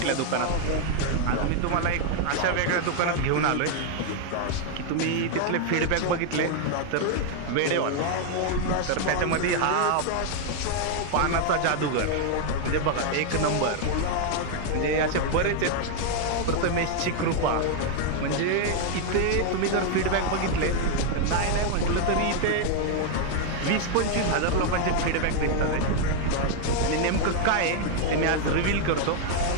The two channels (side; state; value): both; different; correlation 0.00